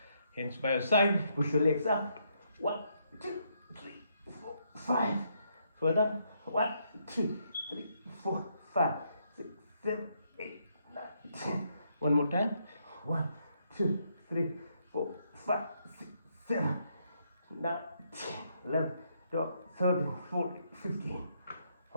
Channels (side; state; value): both; inverted; correlation -0.75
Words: Hands by your side. Push your legs up. 1, 2, 3, 4, 5. Further. 1, 2, 3, 4, 5, 6, 7, 8, 9, 10. One more time. 1, 2, 3, 4, 5, 6, 7, 9, 10, 11, 12, 13, 14, 15.